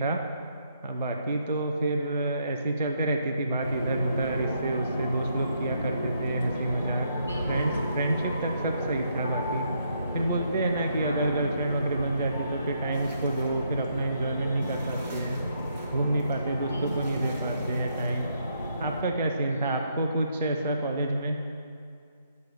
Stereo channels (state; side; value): inverted; both; correlation -0.74